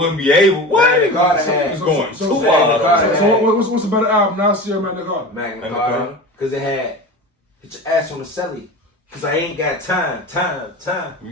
be able. What? Magna Carta It's going too wild. So what's a better album? Nasir or Magna Carta? Magna Carta. Because it had, get your ass on the celly. Because I ain't got time. To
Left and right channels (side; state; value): both; normal; correlation 0.31